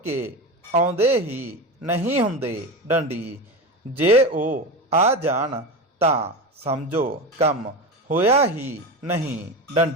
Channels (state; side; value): normal; both; correlation 0.23